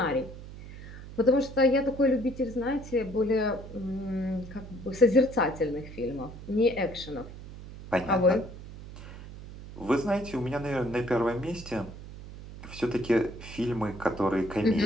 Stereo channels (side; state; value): right; noise; hum, 14 dB below the sound